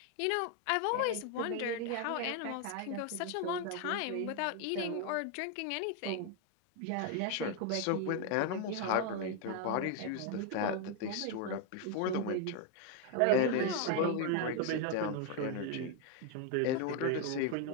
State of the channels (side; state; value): both; different; correlation 0.01